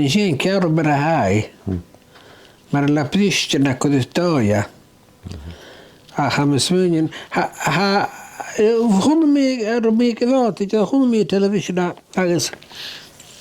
sy'n cero byr a hai. Mae'r laprisht yn ac oedd doia. Ach am ysmwnion, hwn mi gyfod, hwn mi television agos.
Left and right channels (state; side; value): identical; both; correlation 1.00